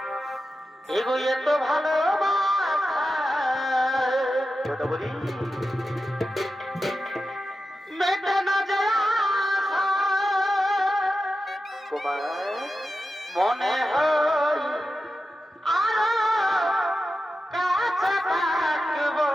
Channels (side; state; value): both; normal; correlation 0.91